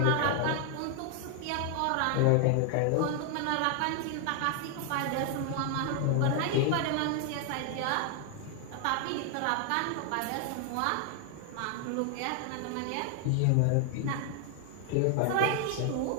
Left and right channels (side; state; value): both; different; correlation 0.00